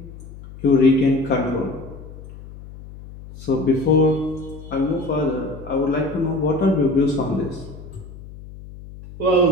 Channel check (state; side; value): noise; left; hum, 16 dB below the sound